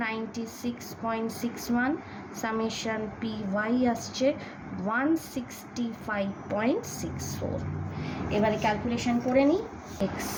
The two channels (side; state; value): both; identical; correlation 1.00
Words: সামেশন py আসছে 165.64। এবারে ক্যালকুলেশন করে নিই।